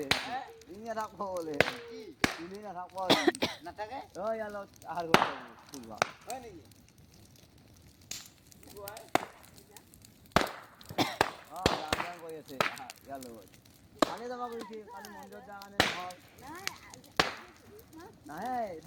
তিনি না রাখবো বলে তিনি না রাখবো না থাকে ওই আলো আর ফুলবা হয় নাকি গান করে আছে গেল কালে যাবা কইছি কালি মন্দির জাগানে হল না এই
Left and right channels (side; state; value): both; identical; correlation 1.00